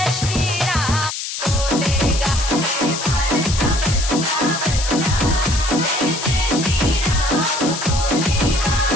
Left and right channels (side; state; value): left; noise; hiss, 5 dB below the sound